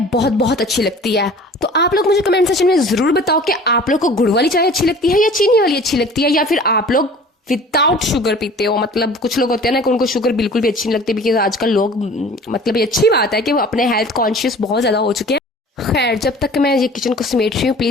बहुत बहुत अच्छी लगती है। तो आप लोग मुझे कमेंट सेक्शन में जरूर बताओ कि आप लोग को गुड़ वाली चाय अच्छी लगती है या चीनी वाली अच्छी लगती है, या फिर आप लोग विदाउट शुगर पीते हो। मतलब कुछ लोग होते हैं ना कि उनको शुगर बिल्कुल भी अच्छी नहीं लगती, बिकॉज आजकल लोग मतलब ये अच्छी बात है कि वो अपने हेल्थ कॉन्शियस बहुत ज्यादा हो चुके हैं। खैर, जब तक मैं ये किचन को समेट रही हूँ,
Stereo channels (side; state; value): both; normal; correlation 0.45